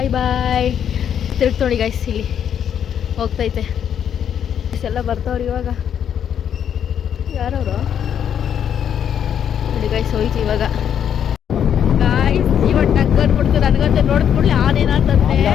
ಬಾಯ್. ತಿರುಗ್ತು ನೋಡಿ ಗೈಸ್, ಇಲ್ಲಿ ಹೋಗ್ತೈತೆ. ಎಲ್ಲ ಬರ್ತಾವ್ರಿ ಇವಾಗ. ಯಾರವರು ನೋಡಿ ಗೈಸ್ ಹೋಯ್ತು ಇವಾಗ ಗಾಯ್ಸ್ ಇವಾಗ ಟಗ್ ಅಂದ್ಬಿಡ್ತು ನನಗಂತ ನೋಡಿದ ಕೂಡಲೇ ಆನೇನಂತಂದೆ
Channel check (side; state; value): right; quieter; 8.9 dB